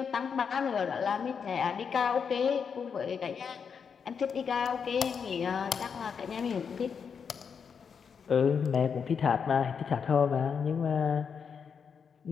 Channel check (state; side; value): quieter; right; 6.5 dB